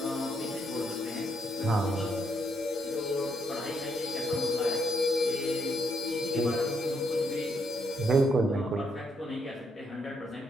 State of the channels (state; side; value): normal; both; correlation 0.76